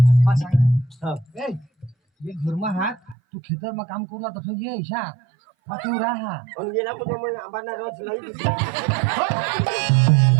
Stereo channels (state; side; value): drops out; left; at 3.2 s